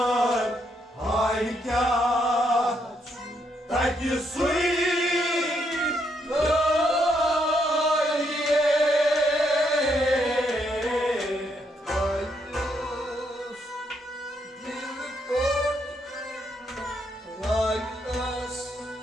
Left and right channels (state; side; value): normal; both; correlation 0.76